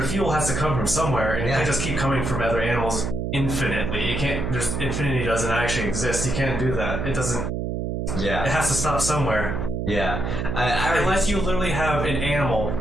fuel has to come from somewhere, and it can't just keep coming from other animals infinitely. It can't. There's infinity doesn't actually exist. You can't do that. It doesn't. Yeah. It has to stop somewhere. Yeah. Unless you literally have an animal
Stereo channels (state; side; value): noise; right; hum, 2 dB below the sound